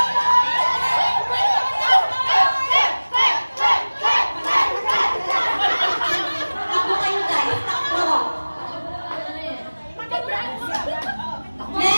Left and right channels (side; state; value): both; inverted; correlation -1.00